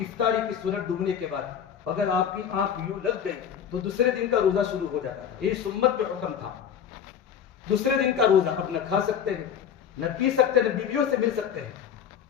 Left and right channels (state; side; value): quieter; right; 8.4 dB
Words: کی سنت ڈوبنے کے بعد اگر آپ کی آنکھ یوں لگ گئی تو دوسرے دن کا روزہ شروع ہو جاتا تھا، یہ سنت پہ حکم تھا۔ دوسرے دن کا روزہ، اب نہ کھا سکتے ہیں، نہ پی سکتے ہیں، نہ بیویوں سے مل سکتے ہیں،